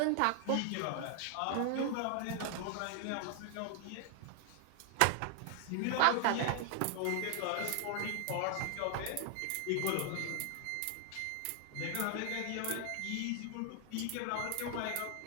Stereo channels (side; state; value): both; different; correlation 0.00